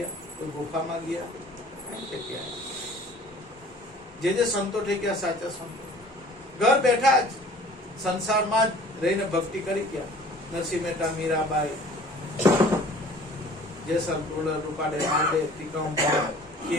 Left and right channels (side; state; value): both; normal; correlation 0.49